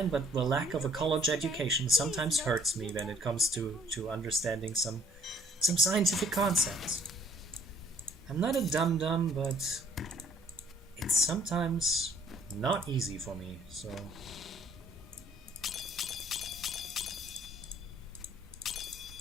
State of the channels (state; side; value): normal; both; correlation 0.60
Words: but the lack of a college education sometimes hurts me when it comes to understanding some scientific concepts. I'm not a dum-dum, but it's sometimes not easy for me, so...